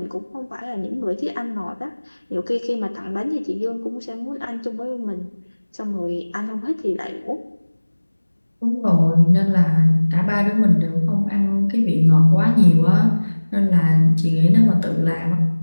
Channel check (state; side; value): inverted; both; correlation -1.00